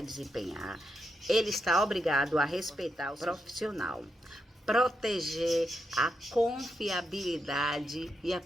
desempenhar, ele está obrigado a respeitar o profissional, proteger a confiabilidade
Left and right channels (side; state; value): both; normal; correlation 0.83